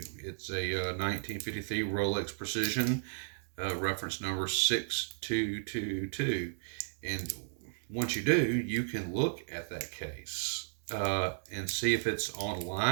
It's a 1953 Rolex Precision, reference number 6222, and once you do, you can look at that case and see if it's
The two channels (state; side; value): silent; left; digital silence